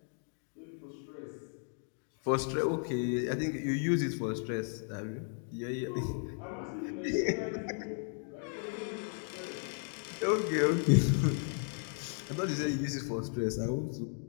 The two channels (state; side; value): silent; right; 54 dB below the other